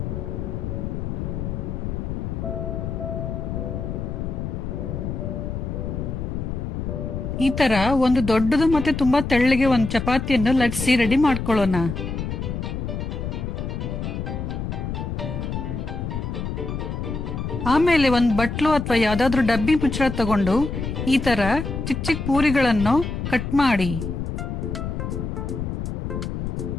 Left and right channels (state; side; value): noise; left; rumble, 4 dB below the sound